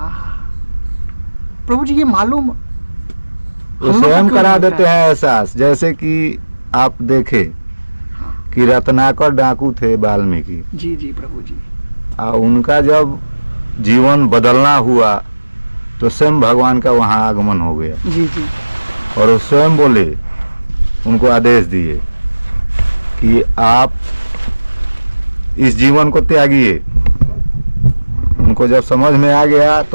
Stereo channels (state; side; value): inverted; both; correlation -1.00